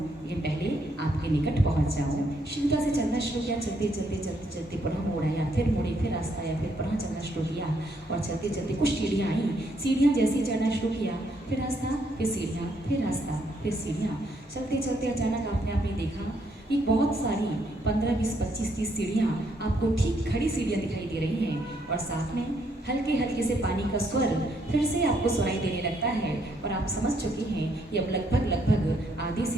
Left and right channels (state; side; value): normal; both; correlation 0.72